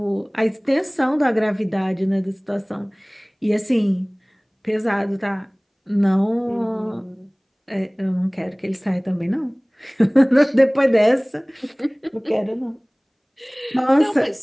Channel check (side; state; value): both; identical; correlation 1.00